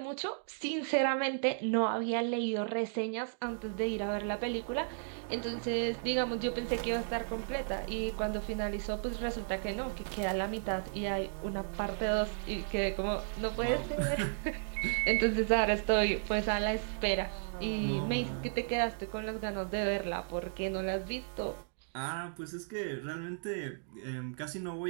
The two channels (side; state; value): left; silent; digital silence